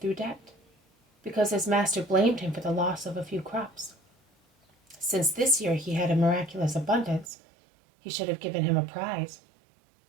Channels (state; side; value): drops out; left; at 7.2 s